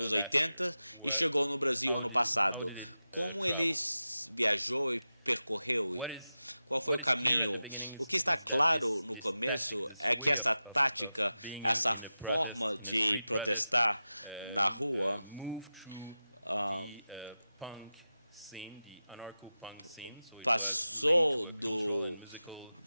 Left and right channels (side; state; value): both; inverted; correlation -0.94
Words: 80 e chegou no Brasil ano passado? Como ele viajou e percorreu? Qual foi o caminho? O que está claro no começo é que essa tática, essa forma de protestar na rua, passou